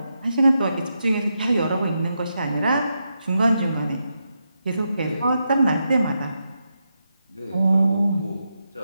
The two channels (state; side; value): inverted; both; correlation -0.85